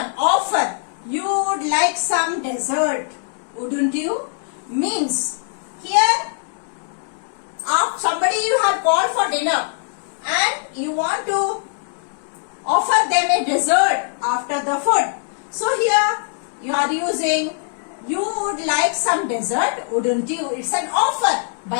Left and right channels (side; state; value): right; silent; digital silence